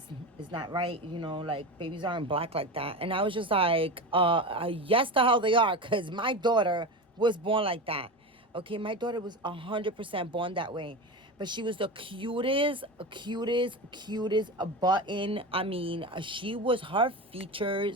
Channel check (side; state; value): both; normal; correlation 0.23